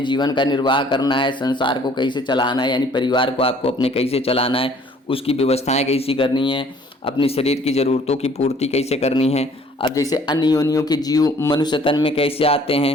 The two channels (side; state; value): both; normal; correlation 0.57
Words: जीवन का निर्वाह करना है, संसार को कैसे चलाना है, यानी परिवार को आपको अपने कैसे चलाना है, उसकी व्यवस्थाएं कैसी करनी है, अपनी शरीर की ज़रूरतों की पूर्ति कैसे करनी है। अब जैसे अन्य योनियों के जीव मनुष्य तन में कैसे आते